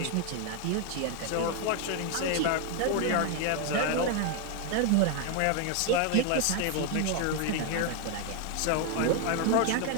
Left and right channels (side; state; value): both; different; correlation 0.01